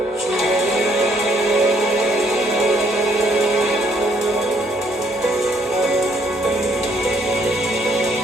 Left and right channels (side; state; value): both; normal; correlation 0.68